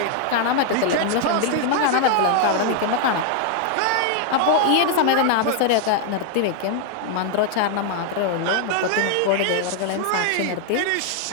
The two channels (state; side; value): different; both; correlation 0.00